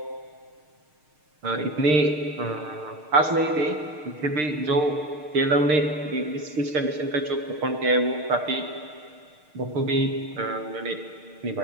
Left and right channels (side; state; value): left; late; 6.6 ms